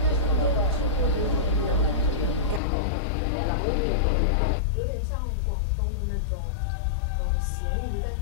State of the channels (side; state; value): right; drops out; at 2.6 s